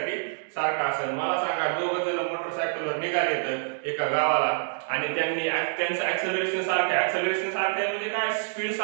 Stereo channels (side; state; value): left; silent; digital silence